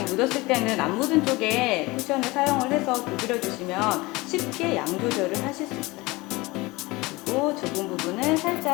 묻었을 때는 안 묻은 쪽에 쿠션을 사용을 해서 두드려주시면 쉽게 양 조절을 하실 수 있어요. 그리고 좁은 부분은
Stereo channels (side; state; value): right; quieter; 22.3 dB